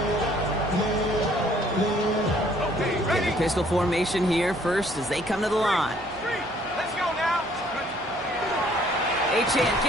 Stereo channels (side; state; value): right; noise; hum, 19 dB below the sound